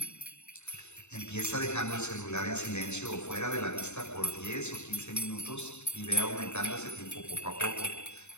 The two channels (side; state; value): right; late; 0.82 ms